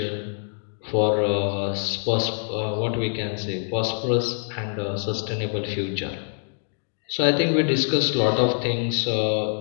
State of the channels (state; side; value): silent; right; digital silence